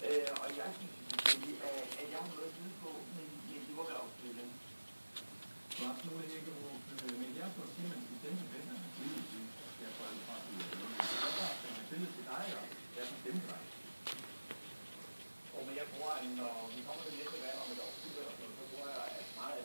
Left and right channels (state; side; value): inverted; both; correlation -1.00